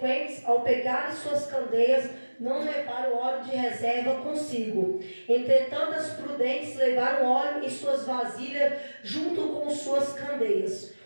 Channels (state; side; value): inverted; both; correlation -1.00